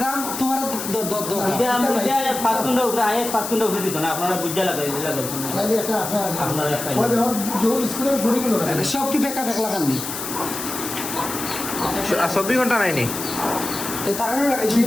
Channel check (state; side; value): noise; left; hiss, 6 dB below the sound